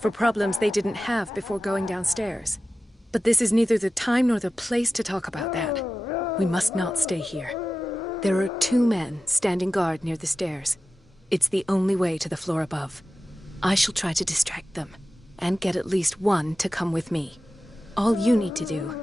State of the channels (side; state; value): both; normal; correlation 0.94